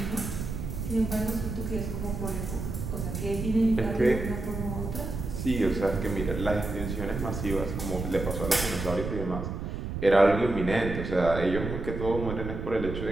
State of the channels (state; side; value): noise; right; rumble, 5 dB below the sound